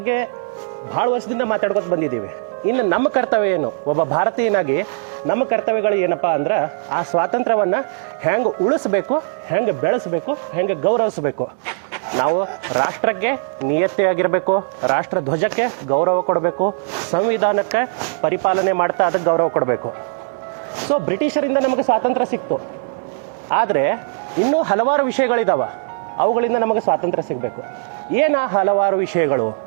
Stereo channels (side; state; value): left; silent; digital silence